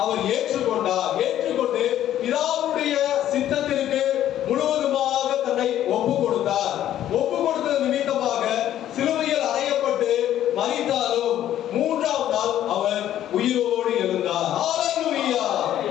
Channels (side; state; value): right; quieter; 11.8 dB